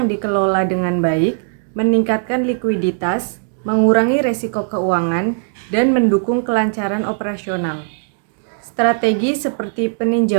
dikelola dengan baik meningkatkan likuiditas, mengurangi resiko keuangan, dan mendukung kelancaran operasional. Strategi seperti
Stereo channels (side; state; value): left; silent; digital silence